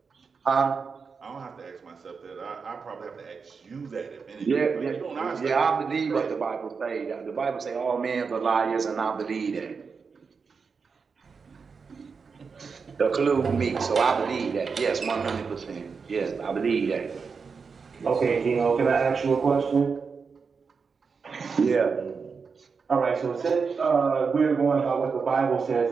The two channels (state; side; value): quieter; left; 5.3 dB